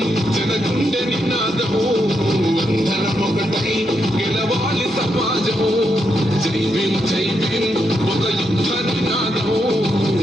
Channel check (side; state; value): both; normal; correlation 0.81